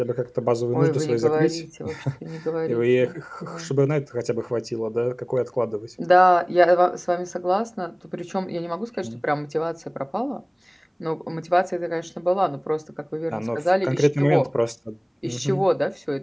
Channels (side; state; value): both; identical; correlation 1.00